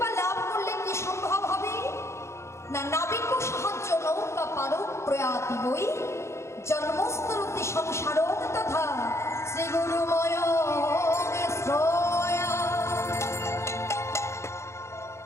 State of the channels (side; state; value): right; late; 0.13 ms